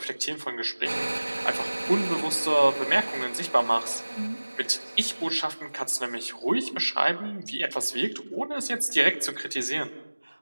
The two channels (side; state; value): both; inverted; correlation -1.00